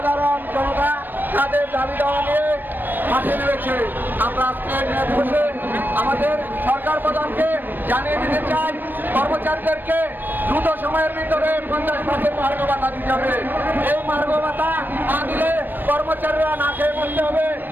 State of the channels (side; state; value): left; late; 0.092 ms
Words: জনতা তাদের দাবি দেওয়া নিয়ে মাঠে নেমেছে। আমরা আজকে বসে আমাদের সরকার প্রধানকে জানিয়ে দিতে চাই, কর্মচারীদেরকে দ্রুত সময়ের ভিতরে 50% মার্গ ভাতা দিতে হবে। এই মার্গ ভাতা না দিলে কর্মচারীরা না খেয়ে মরতে হবে।